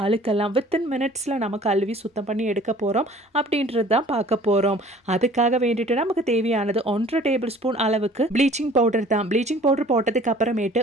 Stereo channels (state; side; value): normal; both; correlation 0.51